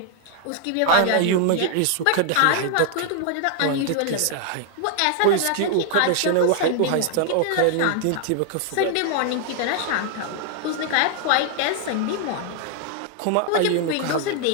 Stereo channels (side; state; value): both; different; correlation 0.00